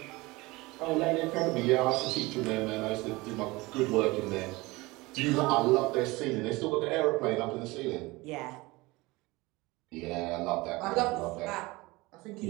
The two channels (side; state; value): left; quieter; 22.2 dB